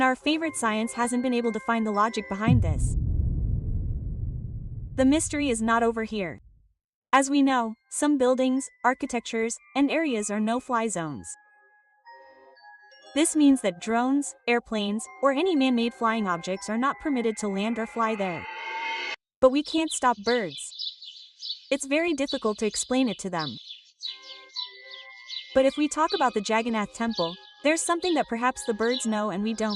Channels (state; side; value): identical; both; correlation 1.00